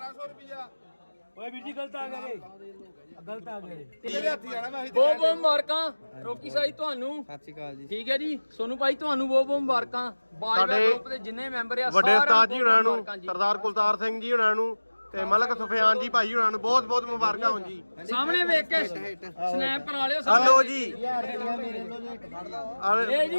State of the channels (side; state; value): both; inverted; correlation -1.00